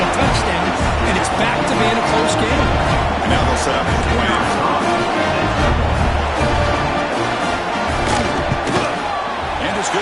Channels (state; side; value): identical; both; correlation 1.00